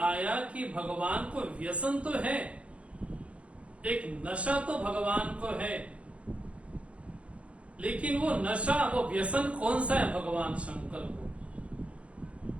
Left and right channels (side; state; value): left; late; 0.062 ms